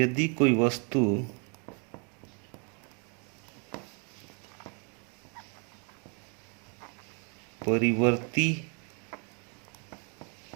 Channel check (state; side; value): quieter; left; 36.0 dB